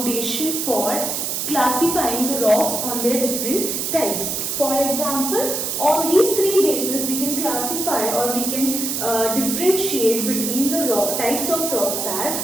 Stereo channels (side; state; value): right; noise; hiss, 2 dB below the sound